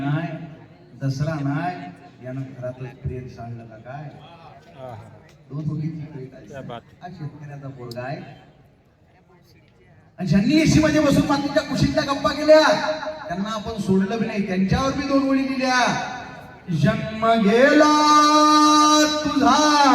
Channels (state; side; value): identical; both; correlation 1.00